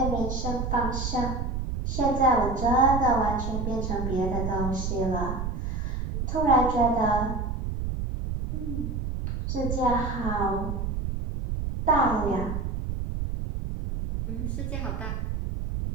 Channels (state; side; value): noise; right; rumble, 3 dB below the sound